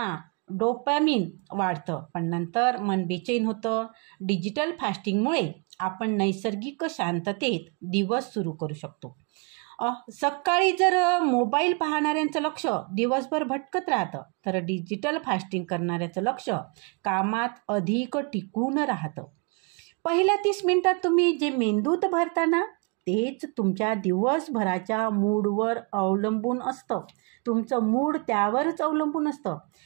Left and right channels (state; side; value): quieter; left; 33.3 dB